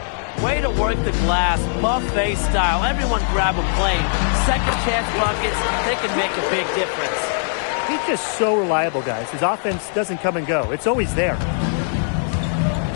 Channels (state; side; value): silent; right; 60 dB below the other